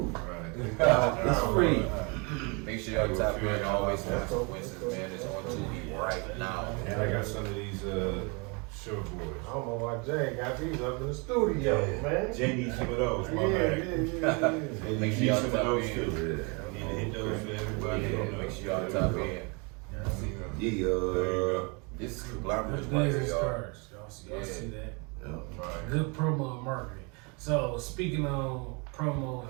It's free. Make sure y'all tap in. Always Consequences, man. It's on Tubi right now. And I got some of these short boys. I don't know why Jay got these up in the studio, man. Jay needs some of those, Yeah, my bad. yeah. Make sure Need y'all some of tap those in. too. Need to hit those for everybody. Yeah, make sure y'all tap in. Yeah. This is glamorous Good right days here, and y'all. scars. Y'all Yeah. see that? Yeah. Right. Good promo and marketing. So speaking on promo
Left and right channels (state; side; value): quieter; left; 31.6 dB